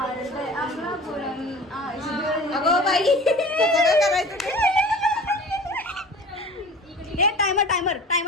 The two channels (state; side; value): normal; both; correlation 0.40